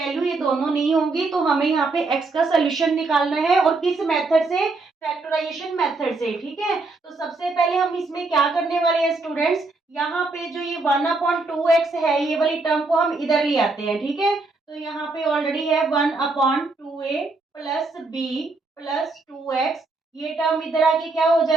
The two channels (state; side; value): quieter; left; 3.5 dB